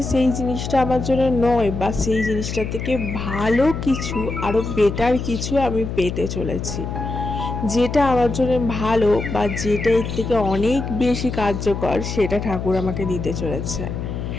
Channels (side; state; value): left; noise; hum, 5 dB below the sound